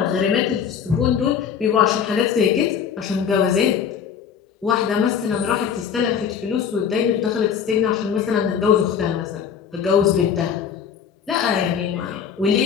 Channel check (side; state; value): right; quieter; 7.5 dB